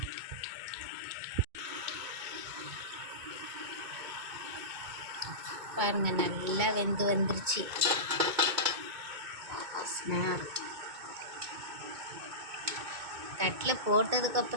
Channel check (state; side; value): late; left; 2.2 ms